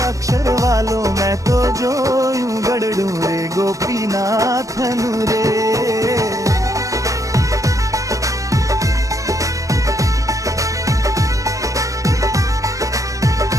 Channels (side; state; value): left; late; 0.16 ms